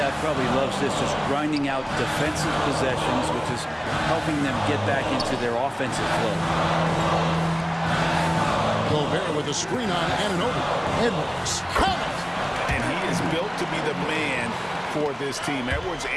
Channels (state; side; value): identical; both; correlation 1.00